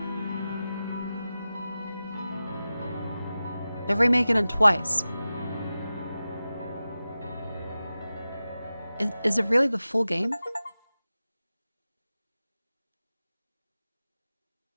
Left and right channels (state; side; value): inverted; both; correlation -0.95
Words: They're remaking it twice. Is it really the full game?